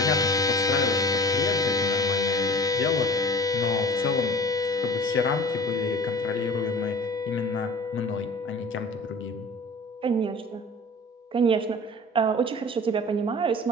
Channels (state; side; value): normal; both; correlation 0.41